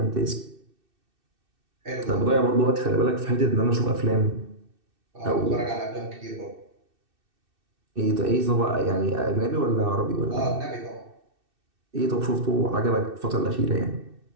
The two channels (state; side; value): late; left; 2.6 ms